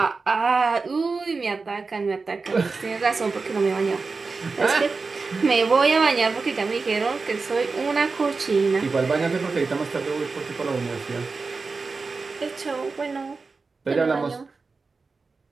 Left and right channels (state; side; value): quieter; left; 4.3 dB